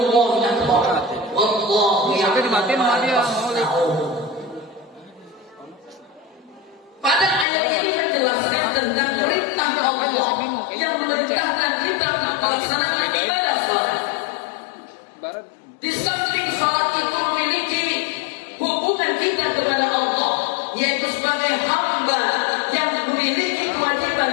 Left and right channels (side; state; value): right; drops out; at 7.5 s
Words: akbar. Wallahu ya'lamu ma tasna'un." Pada ayat ini menjelaskan tentang perintah Allah yang memerintahkan kita melaksanakan ibadah salat. Di samping salat itu memiliki hubungan kita kepada Allah, yaitu sebagai hamba yang memiliki